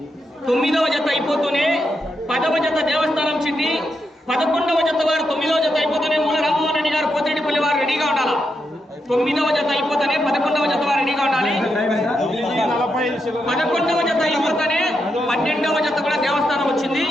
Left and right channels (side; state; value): both; normal; correlation 0.84